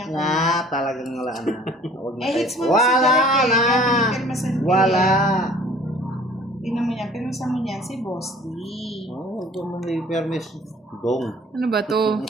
Talagang wala na. Hits mo Wala si Derek na. eh. Pinirmasan ko Wala. Tingnan mo yan, pinirmasan mo niyan si Boss D. Huwag mo may permis. Dong. Ano ba to?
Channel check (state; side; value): normal; both; correlation 0.51